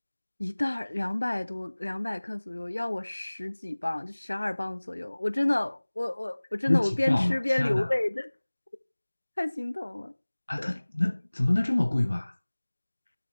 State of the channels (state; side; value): inverted; both; correlation -1.00